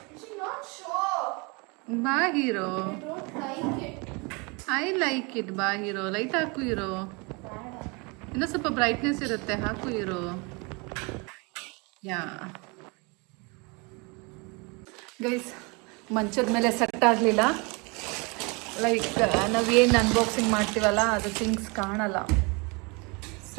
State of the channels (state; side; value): quieter; left; 29.4 dB